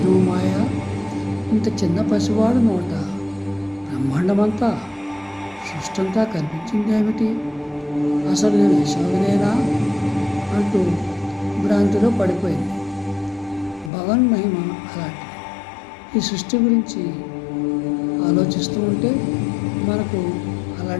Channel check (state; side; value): drops out; right; at 13.9 s